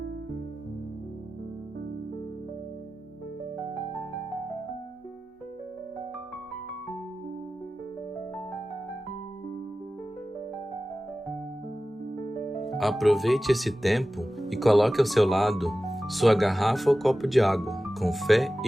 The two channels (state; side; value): normal; both; correlation 0.95